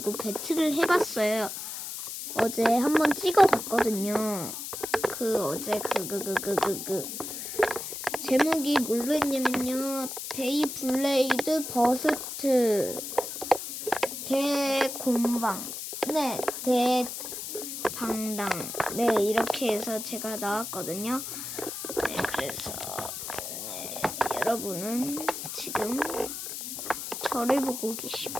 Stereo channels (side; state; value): left; noise; hiss, 7 dB below the sound